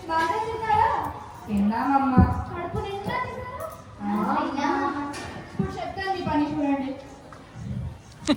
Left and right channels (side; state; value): both; identical; correlation 1.00